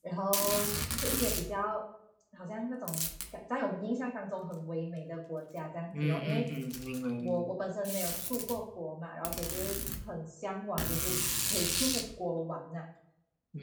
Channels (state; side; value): identical; both; correlation 1.00